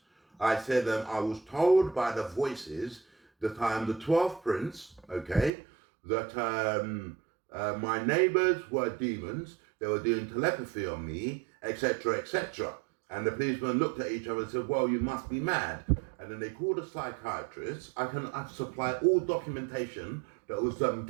I said I was told by the voices that I am the 12th prince, okay, that my neighbours were demons, they were doing telepathy on me, etc., etc. And the policeman looked at each other and said, well, you must be mad. And then they called a psychiatrist. I've supplied all documentation that was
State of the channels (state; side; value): drops out; left; at 5.5 s